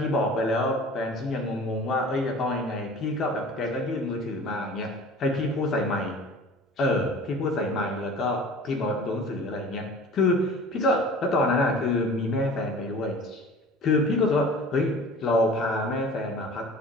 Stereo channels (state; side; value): normal; both; correlation 0.42